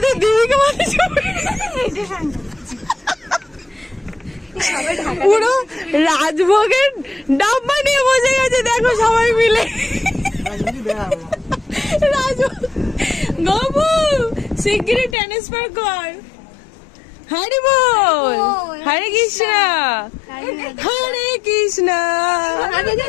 দেবীকে মাঝে পুরো রাজভোগের ডাব্বা নিয়ে বসে গেছে, দেখো সবাই মিলে। গবু শিগগিরই ট্রান্সফার কর। হরি বল, হরে কৃষ্ণ, হরে কৃষ্ণ।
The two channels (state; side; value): drops out; right; at 15.2 s